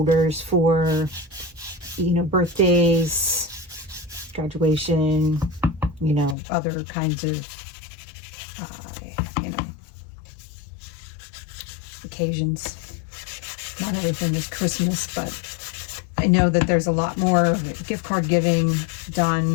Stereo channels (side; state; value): right; drops out; at 6.4 s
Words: for, birthdays, graduation, other kinds of, occasions. Not everything is Christmas, but I know that there's a lot more gift card giving